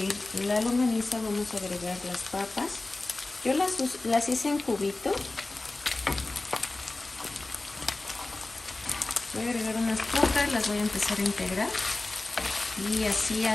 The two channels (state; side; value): quieter; right; 3.1 dB